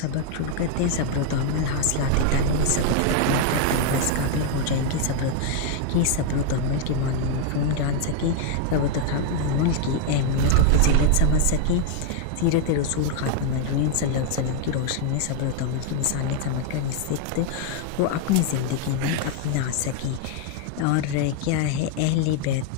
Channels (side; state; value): both; different; correlation 0.00